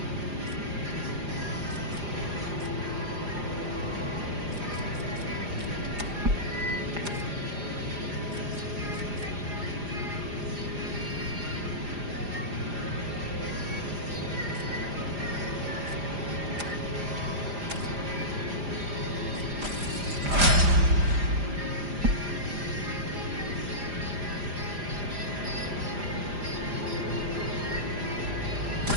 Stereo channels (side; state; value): left; late; 4.9 ms